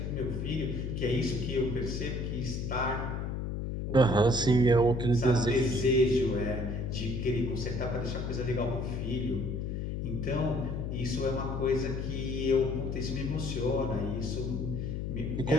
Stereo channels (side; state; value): left; noise; hum, 3 dB below the sound